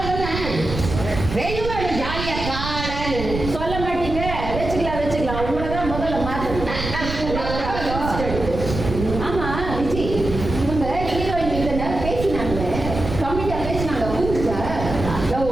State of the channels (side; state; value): right; noise; rumble, 6 dB below the sound